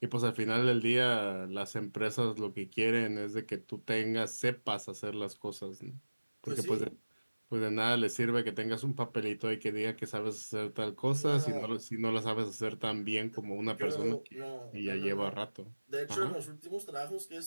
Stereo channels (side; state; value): both; inverted; correlation -1.00